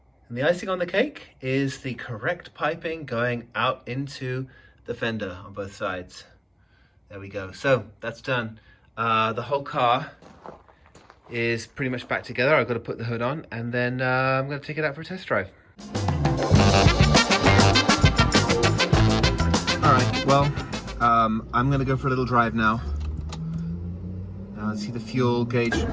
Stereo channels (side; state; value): both; identical; correlation 1.00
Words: And the icing on the cake is the correct piping going out into the fender on both sides. There we go. So that's done. The whole car is pretty much back together. I've got to put the hood on, and then I'm going to take it out for a test drive. All right, well, I'm going to go for a little drive now. See, the fuel gauge